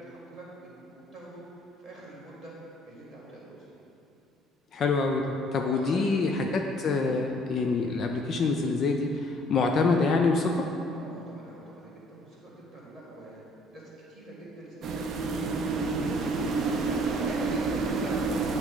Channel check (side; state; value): both; normal; correlation 0.59